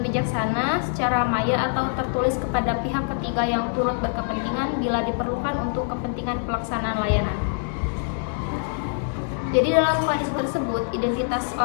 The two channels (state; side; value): silent; right; digital silence